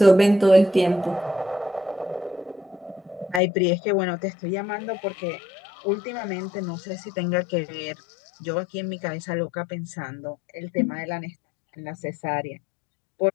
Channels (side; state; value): right; drops out; at 3.4 s